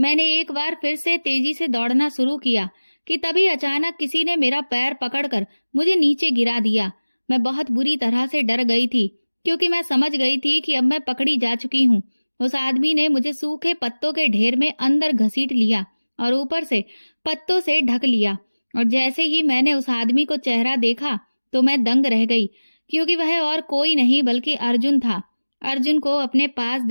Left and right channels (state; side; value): inverted; both; correlation -1.00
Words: एक बार फिर से तेजी से दौड़ना शुरू किया कि तभी अचानक किसी ने मेरा पैर पकड़कर मुझे नीचे गिरा दिया। मैं बहुत बुरी तरह से डर गई थी, क्योंकि मैं समझ गई थी कि अब मैं पकड़ी जा चुकी हूँ। उस आदमी ने मुझे सूखे पत्तों के ढेर में अंदर घसीट लिया और ऊपर से पत्तों से ढक लिया, और जैसे ही मैंने उस आदमी को चेहरा देखा तो मैं दंग रह गई, क्योंकि वह और कोई नहीं बल्कि अर्जुन था। अर्जुन को अपने पास